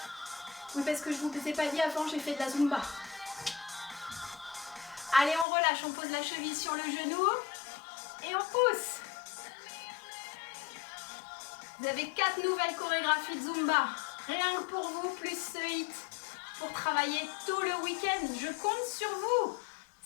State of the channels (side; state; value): right; drops out; at 5.5 s